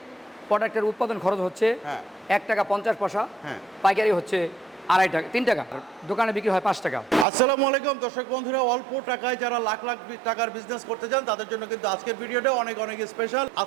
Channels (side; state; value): left; drops out; at 7.2 s